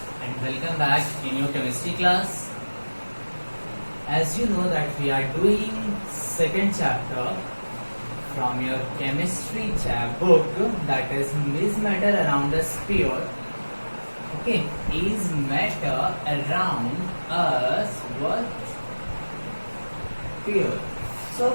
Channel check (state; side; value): inverted; both; correlation -1.00